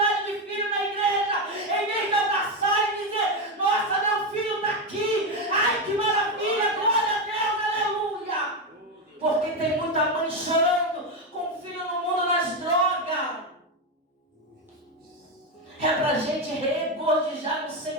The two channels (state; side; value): normal; both; correlation 0.10